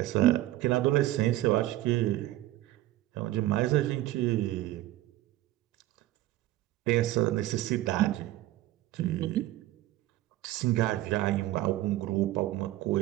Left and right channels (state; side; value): quieter; left; 15.8 dB